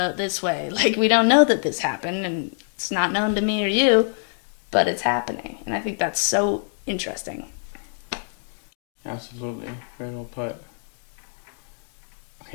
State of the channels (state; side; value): silent; right; digital silence